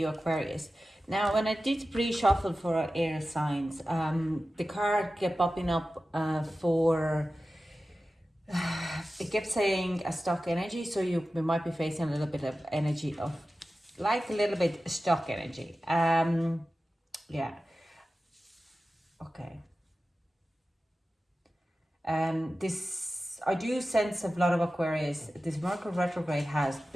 Aquarius. Now, when I did pre-shuffle for our air signs, the card kept popping up for, it kept saying a stuck energy. So we might be facing a little bit of energy of, like a little bit stuck energy. Yeah. Okay. This, I do sense a lot of Aquarius. This Mercury retrograde has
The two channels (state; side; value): normal; both; correlation 0.95